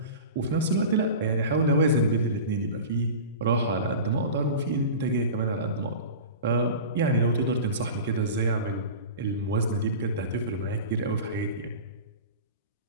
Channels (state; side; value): inverted; both; correlation -0.33